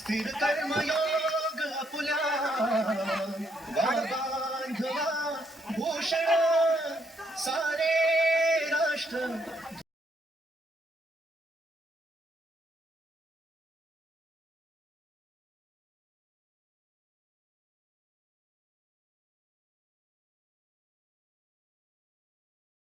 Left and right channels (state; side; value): normal; both; correlation 0.73